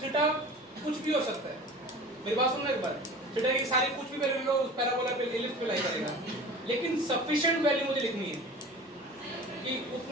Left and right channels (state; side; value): normal; both; correlation 0.39